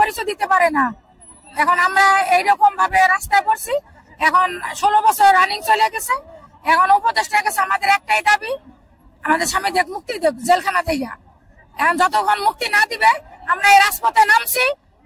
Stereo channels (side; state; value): both; identical; correlation 1.00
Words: দিতে পারে না। এখন আমরা এইরকম ভাবে রাস্তায় পড়ছি। এখন 16 বছর রানিং চলে গেছে, এখন উপদেষ্টার কাছে আমাদের একটাই দাবি, আমাদের স্বামীদের মুক্তি দেব জেলখানা থেকে। এখন যতক্ষণ মুক্তি না দিবে আমরা এই রাজপথে নামছি,